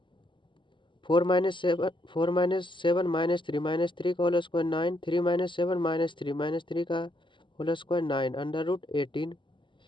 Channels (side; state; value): right; late; 0.24 ms